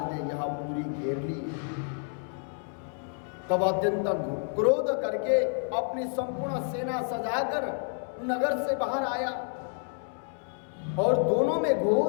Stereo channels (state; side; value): silent; right; 58 dB below the other